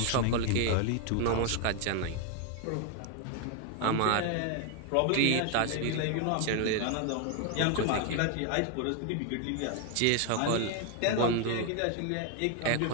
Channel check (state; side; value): different; both; correlation 0.01